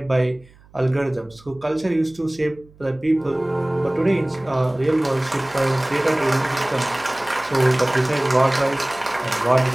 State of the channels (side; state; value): right; noise; hum, 27 dB below the sound